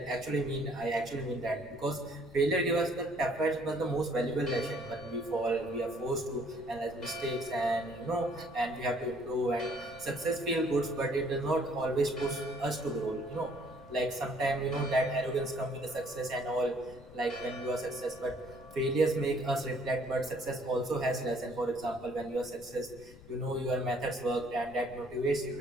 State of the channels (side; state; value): left; noise; rumble, 20 dB below the sound